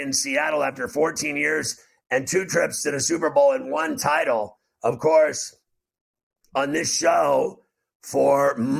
Seattle after 14 years and 2 trips to the Super Bowl and 1 title. Of course, on this show for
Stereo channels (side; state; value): both; identical; correlation 1.00